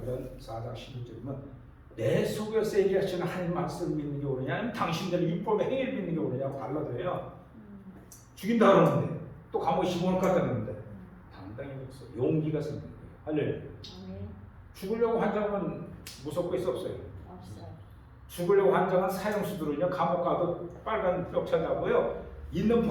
4장 16절이면 내 속에서 얘기하시는 하나님 말씀을 믿는 게 옳으냐 아니면 당신들의 율법의 행위를 믿는 게 옳으냐고 달라져요. 죽인다 그러는데 또 감옥에 집어넣을 것 같다는데 당당히 그랬어. 용기가 생긴 거예요. 할렐루야. 아멘. 죽으려고 환장은 무섭고 있어 없어요? 없어요. 죽으려고 환장한 사형수들은요 감옥 가도 빨간 벽차 잡고요 있는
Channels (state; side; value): identical; both; correlation 1.00